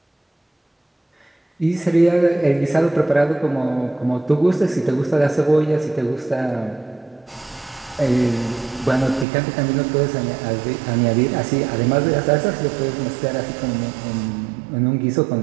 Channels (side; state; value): left; drops out; at 9.2 s